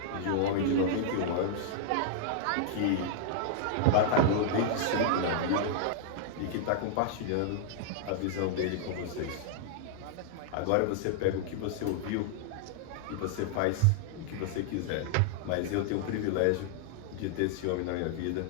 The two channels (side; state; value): both; different; correlation -0.01